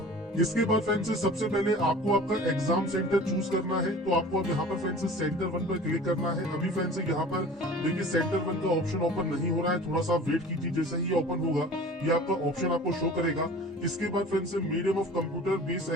इसके बाद फ्रेंड्स सबसे पहले आपको आपका एग्जाम सेंटर चूज करना है। तो आपको अब यहाँ पर फ्रेंड्स सेंटर 1 पर क्लिक करना है। अभी फ्रेंड्स यहाँ पर देखिए सेंटर 1 का ऑप्शन ओपन नहीं हो रहा है, थोड़ा सा वेट कीजिए। जैसे ही ओपन होगा ये आपका ऑप्शन आपको शो करेगा। इसके बाद friends medium of computer based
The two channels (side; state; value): both; normal; correlation 0.42